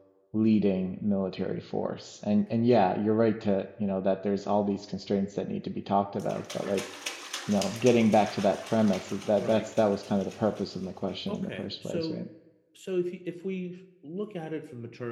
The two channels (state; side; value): identical; both; correlation 1.00